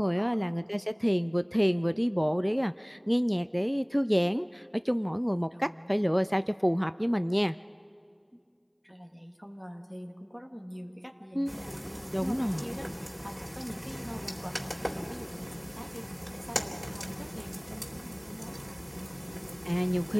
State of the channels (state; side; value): identical; both; correlation 1.00